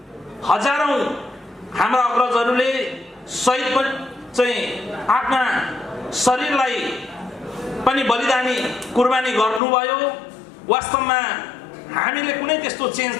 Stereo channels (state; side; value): drops out; right; at 9.6 s